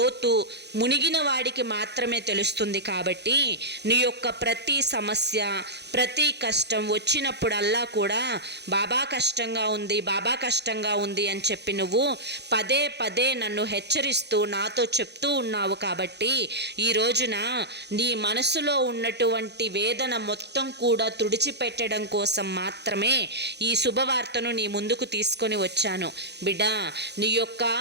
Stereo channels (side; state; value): left; late; 0.49 ms